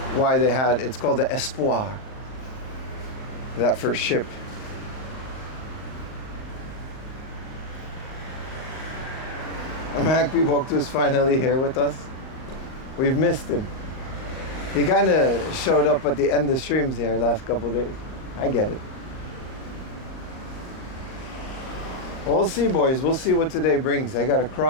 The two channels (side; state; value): right; late; 39 ms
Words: why they had, it's called the Espoir, that first ship. Mahakpi Boktu is finally here with us. We've missed him. He kind of showed up at the end of streams there last couple days. I get it. We'll see, boys. We'll see what today brings. I got to